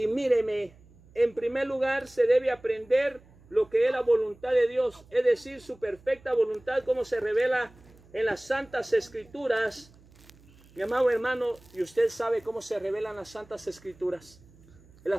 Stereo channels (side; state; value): right; noise; hum, 26 dB below the sound